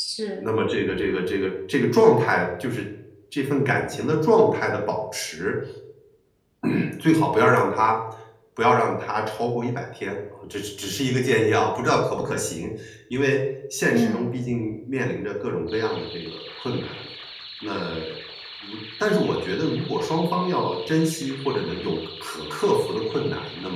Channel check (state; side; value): identical; both; correlation 1.00